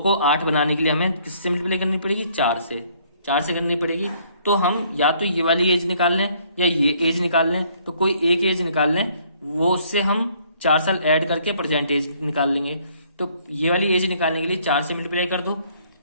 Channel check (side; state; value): both; inverted; correlation -0.63